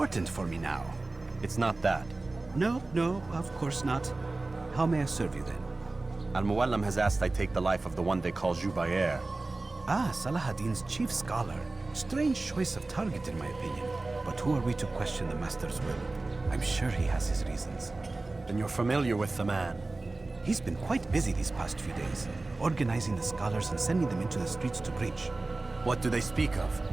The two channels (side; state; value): left; quieter; 3.2 dB